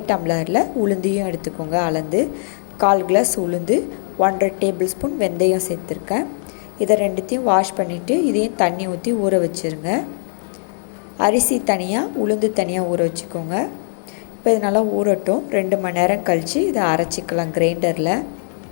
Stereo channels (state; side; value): silent; right; 64 dB below the other